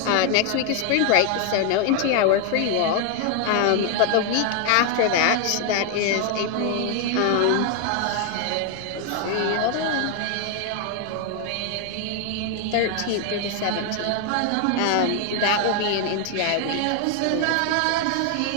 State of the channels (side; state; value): both; different; correlation 0.00